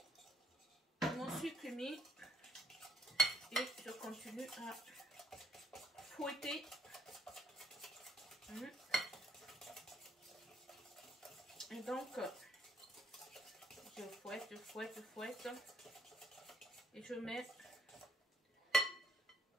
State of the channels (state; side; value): normal; both; correlation 0.69